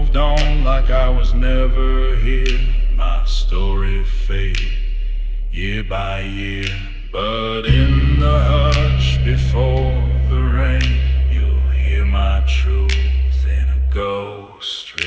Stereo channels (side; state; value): both; identical; correlation 1.00